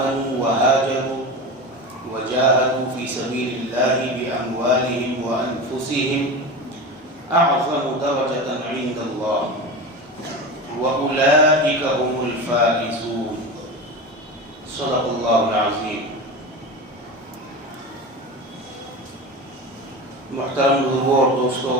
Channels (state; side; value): normal; both; correlation 0.27